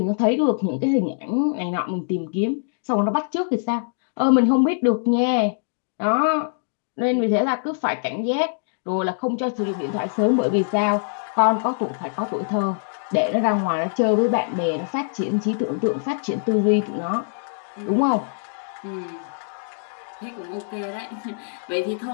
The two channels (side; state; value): right; silent; digital silence